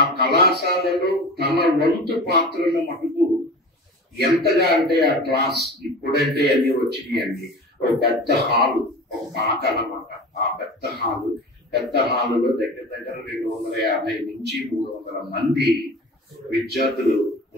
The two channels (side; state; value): both; normal; correlation 0.35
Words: కళాశాలలో తన వంతు పాత్రను మటుకు ఎంతగా అంటే ఆ క్లాస్ ఇప్పుడంటే అన్ని వచ్చినాయి అండి. ఒక పెద్ద హాలు, ఒక పాక అన్నమాట. ఆ పెద్ద హాలులో దగ్గర 250 నుంచి 300 మంది విద్యార్థులు